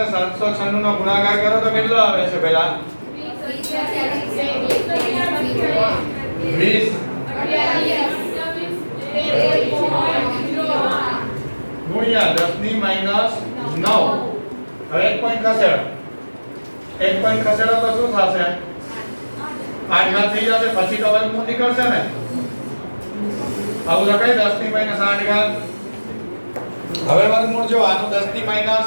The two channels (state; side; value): inverted; both; correlation -1.00